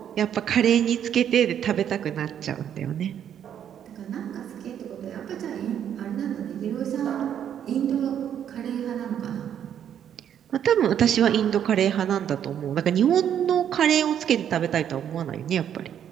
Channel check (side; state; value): left; quieter; 9.4 dB